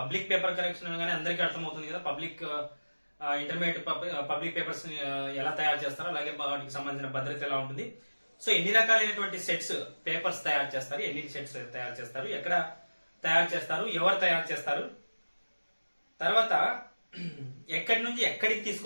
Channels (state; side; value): inverted; both; correlation -1.00